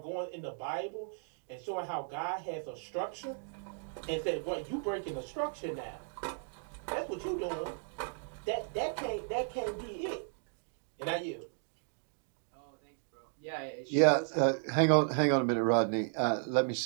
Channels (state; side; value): silent; left; 54 dB below the other